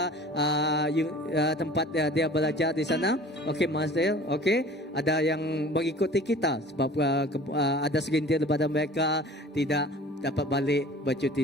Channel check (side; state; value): both; normal; correlation 0.45